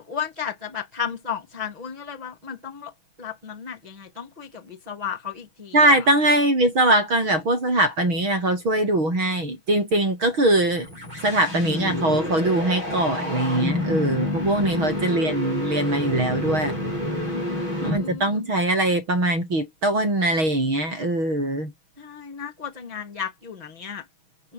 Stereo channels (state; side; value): late; left; 6.3 ms